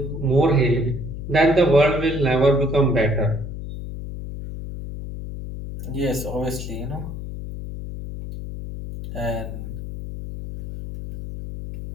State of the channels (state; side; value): noise; left; hum, 8 dB below the sound